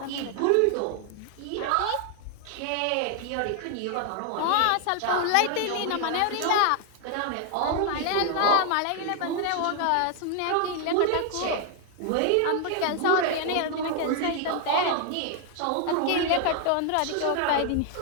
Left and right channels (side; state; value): both; different; correlation 0.00